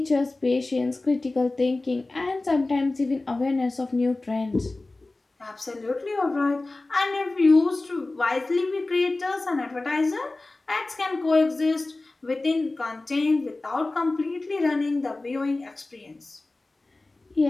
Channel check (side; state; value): right; quieter; 3.1 dB